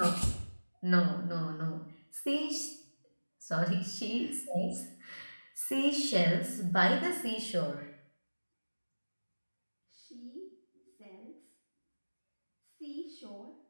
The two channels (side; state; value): both; inverted; correlation -1.00